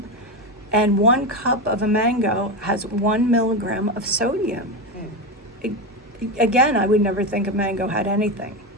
and 1 cup of a mango has 1 milligram of sodium. Again, I would never think a mango had anything.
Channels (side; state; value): both; normal; correlation 0.15